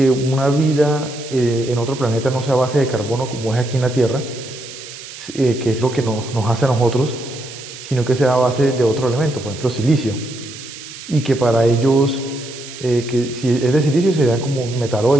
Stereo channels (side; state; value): right; noise; hiss, 14 dB below the sound